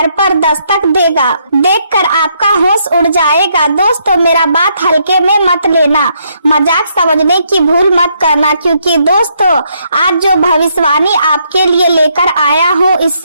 पर दस्तक देगा, देखकर आपका होश उड़ जाएगा। दोस्तों, मेरा बात हल्के में मत लेना, मजाक समझने की भूल मत करना, क्योंकि दोस्तों आज जो भविष्यवाणी आपके लिए लेकर आया हूँ,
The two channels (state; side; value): inverted; both; correlation -0.74